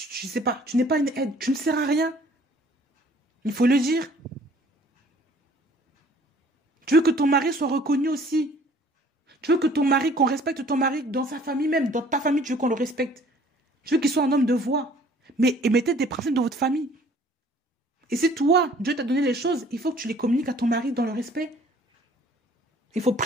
sais pas, tu n'es pas une aide, tu ne sers à rien. Il faut le dire. Tu veux que ton mari soit reconnu aussi. Tu veux que ton mari, qu'on respecte ton mari dans sa famille même, dans ta famille, tu veux qu'on le respecte. Tu veux qu'il soit un homme de voix. Mais mettez des principes dans votre famille. Et si toi, Dieu t'a donné les choses, il faut que tu les communiques à ton mari dans le respect. Il faut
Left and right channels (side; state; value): both; normal; correlation 0.55